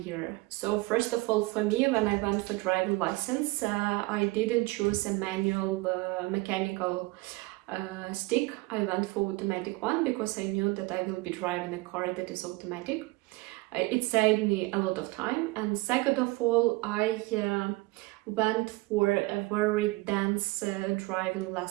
So first of all, for me, when I went for driving license, I didn't choose a manual mechanical stick. I went for automatic one because I knew that I will be driving a car that is automatic. It saved me a lot of time. And second of all, I went for a very dense driving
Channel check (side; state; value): left; quieter; 22.9 dB